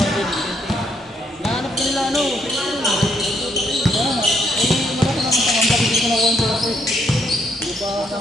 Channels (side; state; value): both; normal; correlation 0.73